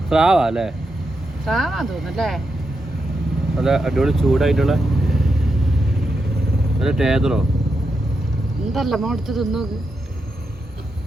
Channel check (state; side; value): normal; both; correlation 0.85